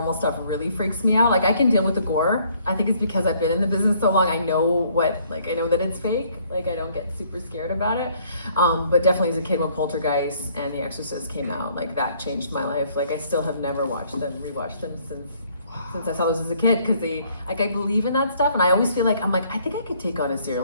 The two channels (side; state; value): both; inverted; correlation -0.63